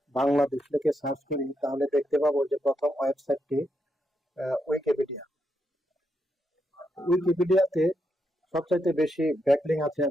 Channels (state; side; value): normal; both; correlation 0.82